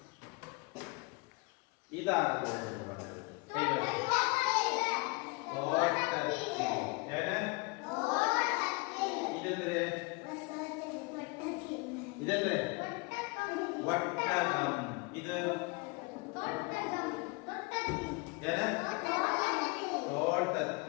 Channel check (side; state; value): right; quieter; 28.4 dB